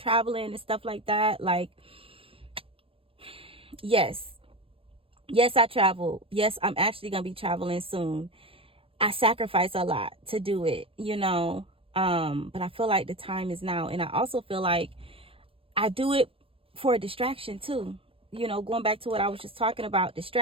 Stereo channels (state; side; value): late; left; 0.27 ms